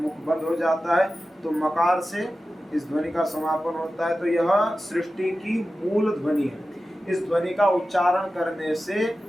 बंद हो जाता है, तो मकार से इस ध्वनि का समापन होता है। तो यह सृष्टि की मूल ध्वनि है। इस ध्वनि का उच्चारण करने से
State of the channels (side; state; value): both; normal; correlation 0.94